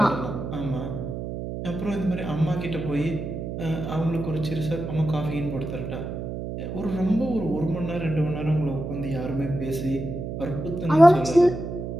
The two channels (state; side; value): noise; right; hum, 6 dB below the sound